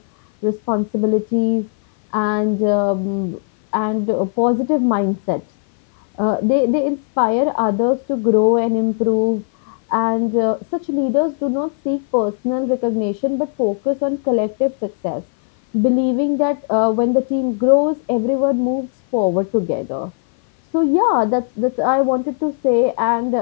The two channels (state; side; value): silent; right; 56 dB below the other